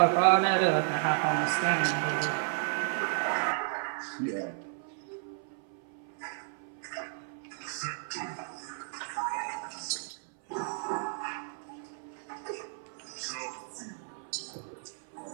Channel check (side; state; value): left; silent; 56 dB below the other